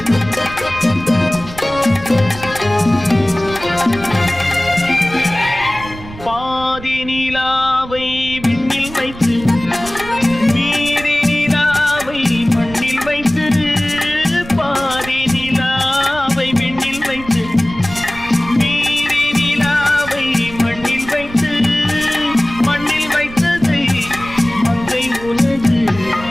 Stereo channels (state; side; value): noise; right; rumble, 15 dB below the sound